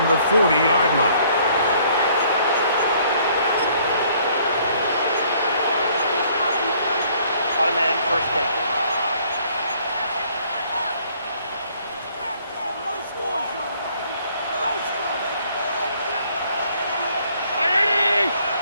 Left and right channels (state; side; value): inverted; both; correlation -0.62